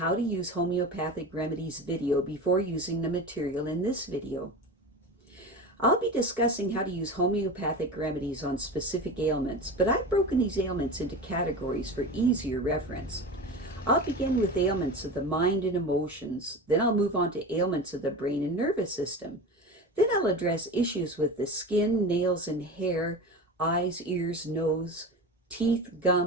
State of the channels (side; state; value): both; normal; correlation 0.29